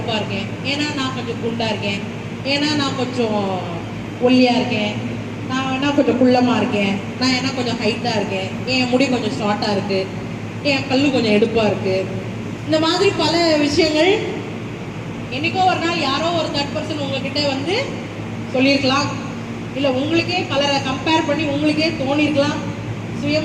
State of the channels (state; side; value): identical; both; correlation 1.00